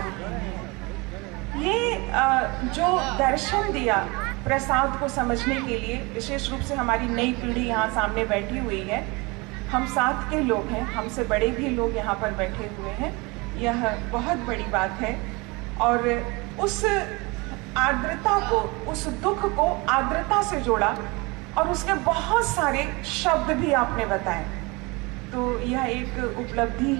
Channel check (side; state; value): left; quieter; 26.1 dB